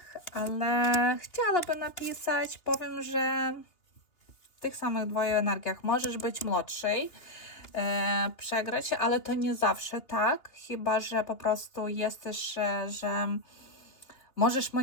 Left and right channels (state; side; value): late; right; 2.9 ms